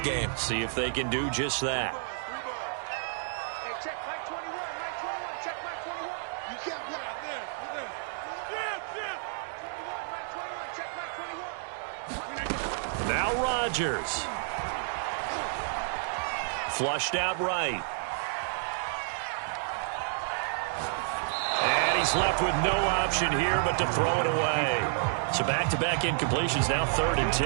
See if they can do just that. Now Rodgers. Flushed out right. And he's left with no option here but to throw it away. So back-to-back incompletions, now 3rd and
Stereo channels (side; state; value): left; silent; digital silence